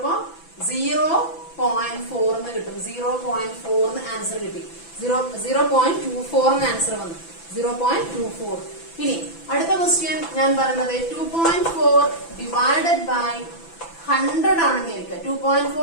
0.4 എന്ന് കിട്ടും. 0.4 എന്ന് ആൻസർ കിട്ടി. 0.24 എന്ന് ആൻസർ വന്നു. 0.24. ഇനി അടുത്ത ക്വസ്റ്റ്യൻ ഞാൻ പറയുന്നത് 2.4 ഡിവൈഡഡ് ബൈ 100 ആണെന്ന് വിചാരിക്കുക.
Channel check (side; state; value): right; late; 6.0 ms